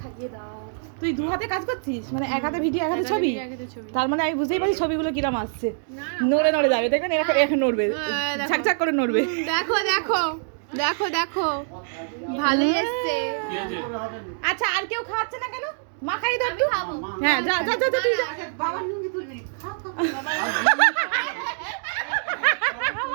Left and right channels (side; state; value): left; silent; digital silence